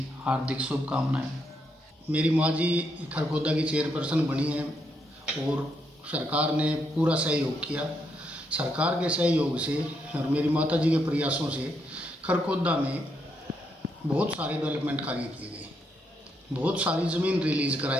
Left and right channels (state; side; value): normal; both; correlation 0.78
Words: हार्दिक शुभकामनाएं। मेरी माँ जी खरखौदा की चेयरपर्सन बनी हैं और सरकार ने पूरा सहयोग किया। सरकार के सहयोग से और मेरी माता जी के प्रयासों से खरखौदा में बहुत सारे डेवलपमेंट कार्य किए गए, बहुत सारी ज़मीन रिलीज़